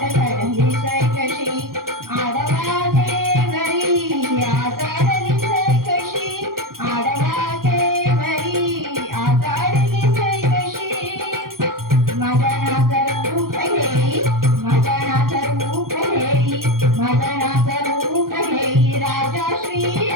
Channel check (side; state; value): left; late; 0.92 ms